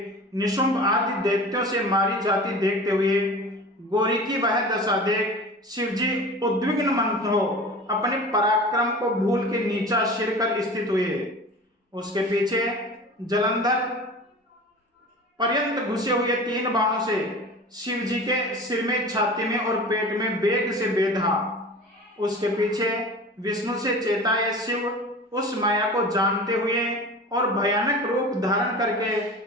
निशुंभ आदि दैत्यों से मारी जाती देखते हुए गोरी की वह दशा देख शिव जी उद्विग्न मन हो अपने पराक्रम को भूल के नीचा सिर कर स्थित हुए। उसके पीछे जलंधर पर्यंत घुसे हुए 3 बाणों से शिव जी के सिर में, छाती में और पेट में वेग से बेधा। उसके पीछे विष्णु से चेताए शिव उस माया को जानते हुए और भयानक रूप धारण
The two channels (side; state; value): both; normal; correlation 0.37